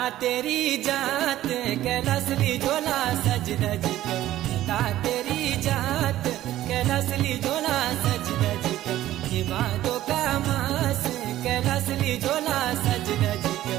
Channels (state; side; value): quieter; left; 14.0 dB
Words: तेरी जात कैलासली झोला सज धज कर, नंदा तेरी जात कैलासली झोला सज धज कर, ये भादो का मास कैलासली झोला सज धज कर,